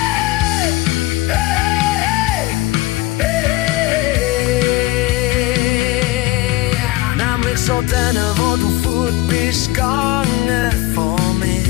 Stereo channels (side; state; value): right; quieter; 18.6 dB